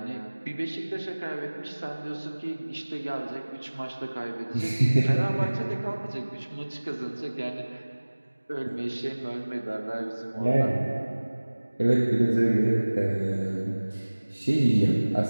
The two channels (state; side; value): inverted; both; correlation -1.00